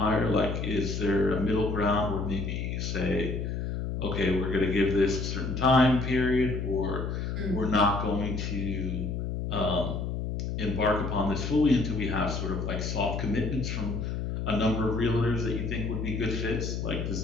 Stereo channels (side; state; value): left; noise; hum, 3 dB below the sound